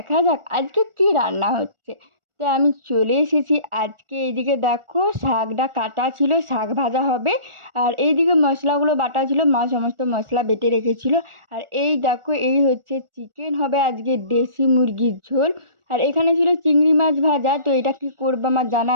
যাক আজকে কি রান্না হচ্ছে। তো আমি চলে এসেছি। আজকে এইদিকে দেখো শাকটা কাটা ছিল, শাক ভাজা হবে। আর এইদিকে মশলাগুলো বাটা ছিল, মা সমস্ত মশলা বেটে রেখেছিল। আর এই দেখো এই হচ্ছে চিকেন হবে আজকে, দেশি মুরগির ঝোল। আর এখানে ছিল চিংড়ি মাছ ভাজা। তো এটা কি করবো আমার জানা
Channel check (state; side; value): late; left; 1.4 ms